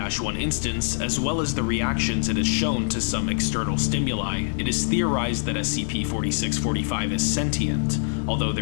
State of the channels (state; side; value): silent; right; 60 dB below the other